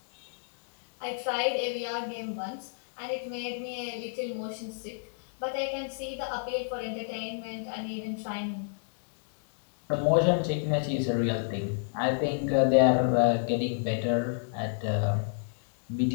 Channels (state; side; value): silent; right; digital silence